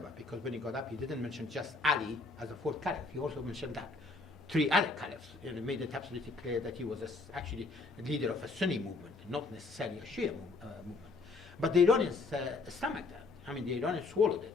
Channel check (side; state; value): right; quieter; 3.8 dB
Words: because when he got up, he didn't mention just Ali as a fourth caliph. He also mentioned that 3 other caliphs, and made it absolutely clear that he was actually a leader of a Sunni movement, not necessarily a Shia movement. But the Iranians stomached that. The Iranians swallowed